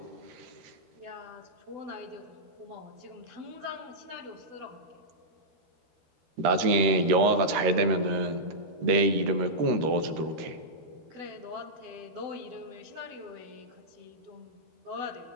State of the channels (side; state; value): left; late; 13 ms